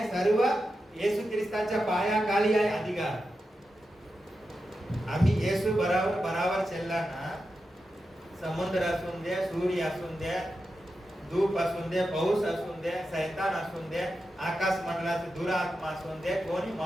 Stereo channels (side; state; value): both; normal; correlation 0.90